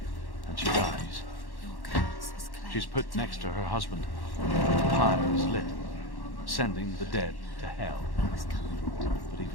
and she dies. She's put next to her husband. The pyre is lit, sending the dead to hell. But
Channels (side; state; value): right; late; 1.1 ms